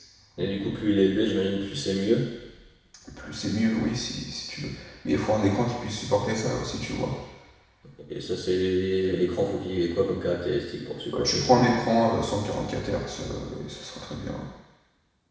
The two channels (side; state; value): both; identical; correlation 1.00